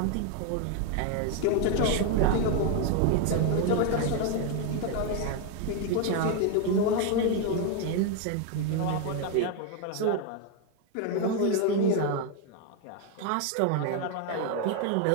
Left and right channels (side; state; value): both; different; correlation 0.01